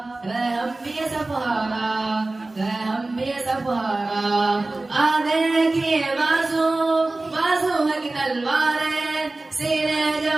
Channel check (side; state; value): left; quieter; 3.0 dB